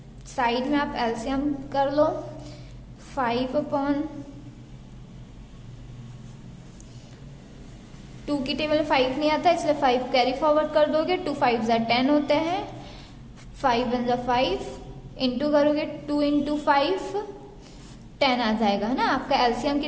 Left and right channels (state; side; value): identical; both; correlation 1.00